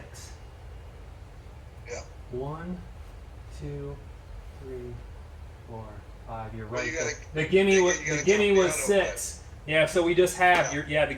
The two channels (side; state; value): both; identical; correlation 1.00